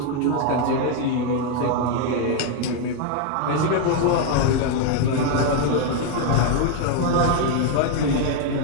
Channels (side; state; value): both; different; correlation 0.01